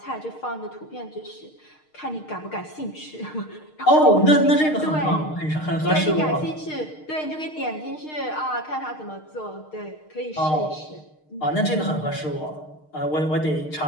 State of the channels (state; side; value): late; right; 6.5 ms